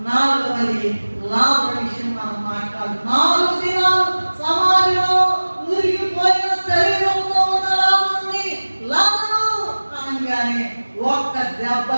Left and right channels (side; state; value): both; inverted; correlation -1.00